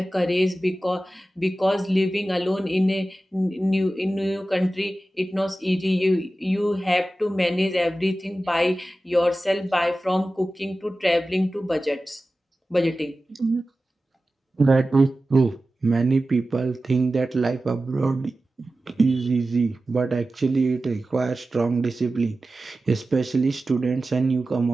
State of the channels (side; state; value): both; normal; correlation 0.95